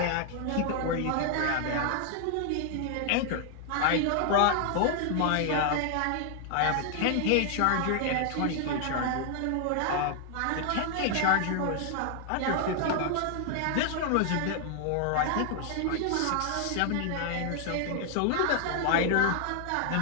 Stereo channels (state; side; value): different; both; correlation 0.00